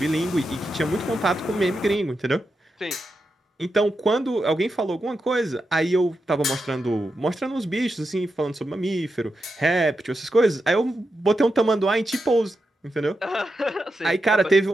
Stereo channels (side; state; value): both; normal; correlation 0.87